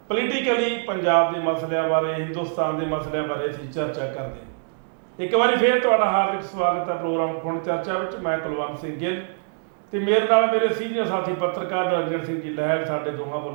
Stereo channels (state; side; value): silent; left; digital silence